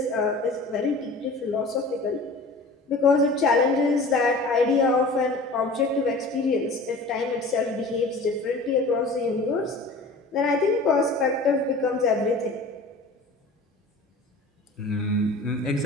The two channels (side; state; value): right; quieter; 3.1 dB